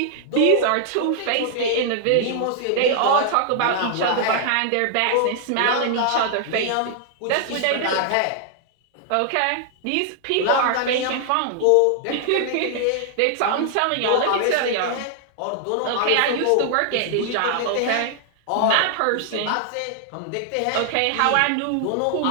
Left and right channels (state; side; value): different; both; correlation -0.01